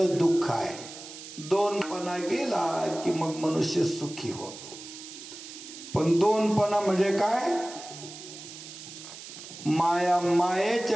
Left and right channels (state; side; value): noise; right; hiss, 14 dB below the sound